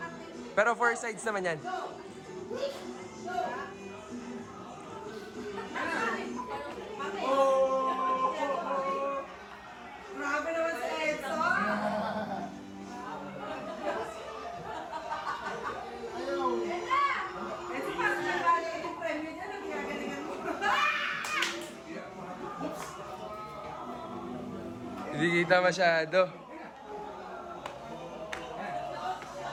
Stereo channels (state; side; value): identical; both; correlation 1.00